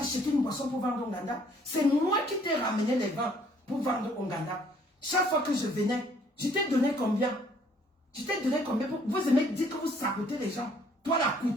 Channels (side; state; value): both; normal; correlation 0.61